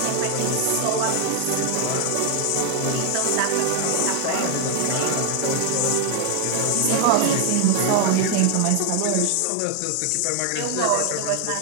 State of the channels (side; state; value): both; different; correlation 0.00